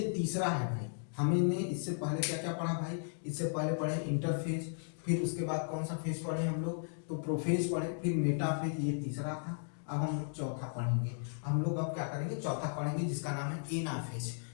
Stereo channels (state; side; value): silent; right; digital silence